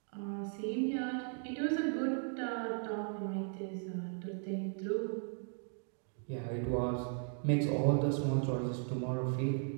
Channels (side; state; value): left; silent; 53 dB below the other